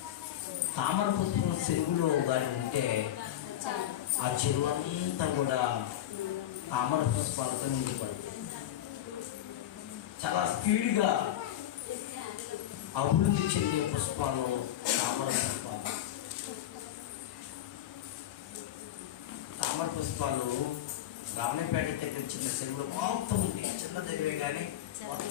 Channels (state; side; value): quieter; right; 12.2 dB